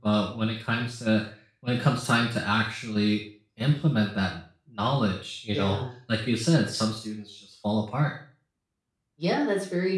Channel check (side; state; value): both; identical; correlation 1.00